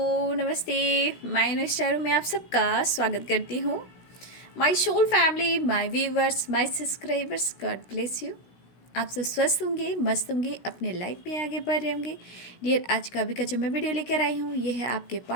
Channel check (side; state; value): right; late; 16 ms